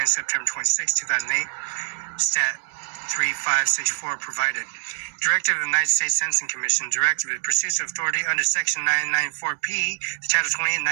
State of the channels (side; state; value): left; silent; 62 dB below the other